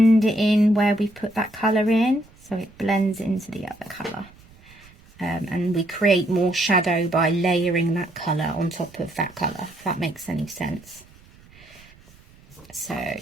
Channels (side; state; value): right; noise; rumble, 26 dB below the sound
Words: it in where we put that colour in, so it blends into the other colour. And we create more shadow by layering that colour on top of that colour, if that makes any sense. So